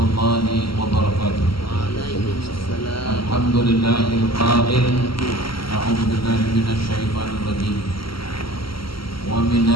وبركاته. الحمد لله القائل أعوذ بالله من الشيطان الرجيم ومن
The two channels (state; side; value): late; right; 0.74 ms